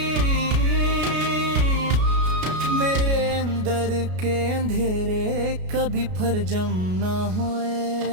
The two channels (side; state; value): left; late; 33 ms